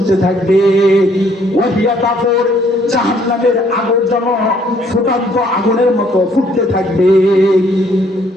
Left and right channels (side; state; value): both; normal; correlation 0.65